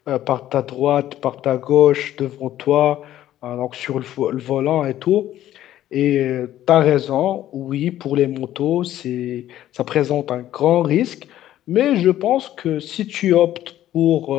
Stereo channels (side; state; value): right; quieter; 12.8 dB